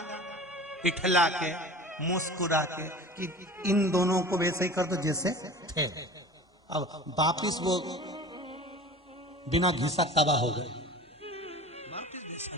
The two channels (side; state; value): both; normal; correlation 0.39